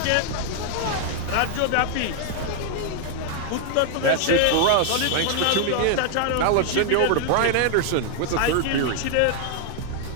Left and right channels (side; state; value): both; different; correlation 0.00